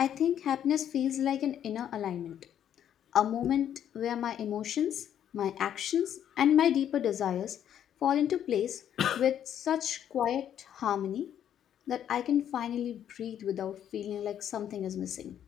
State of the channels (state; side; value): quieter; right; 9.9 dB